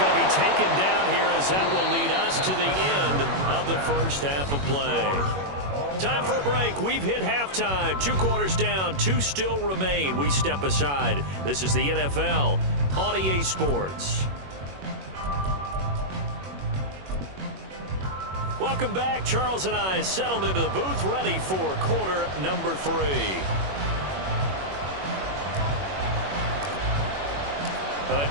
to be taken down here as that will lead us to the end of the first half of play. Time for a break. We've hit halftime. 2 quarters down, 2 still remain. We step aside. This is the NFL on EA Sports. Welcome back. Charles and I settled into the booth, ready for quarter number 3. A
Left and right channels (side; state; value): left; late; 21 ms